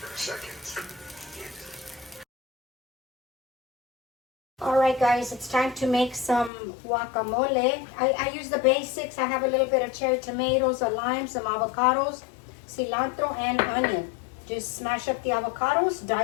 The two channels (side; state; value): right; drops out; at 6.5 s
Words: All right, guys, it's time to make some guacamole. I use the basics. I have a little bit of cherry tomatoes, a lime, some avocados, cilantro, and onion. Just smash up the avocados,